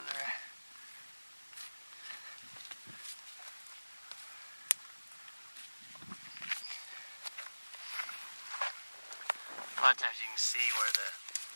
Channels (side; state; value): both; inverted; correlation -1.00